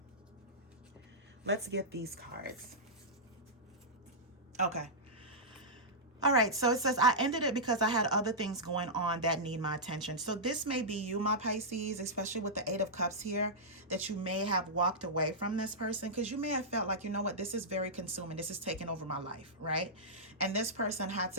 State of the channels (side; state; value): both; normal; correlation -0.12